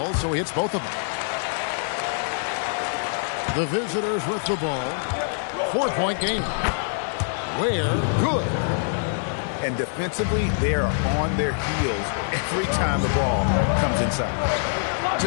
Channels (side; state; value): right; silent; digital silence